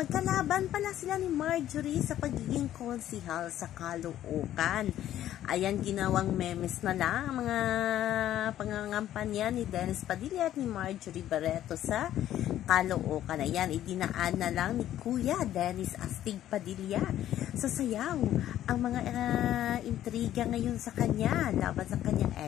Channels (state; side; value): quieter; right; 12.3 dB